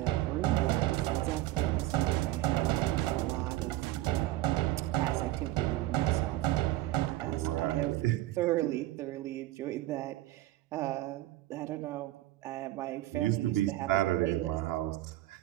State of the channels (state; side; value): quieter; left; 16.2 dB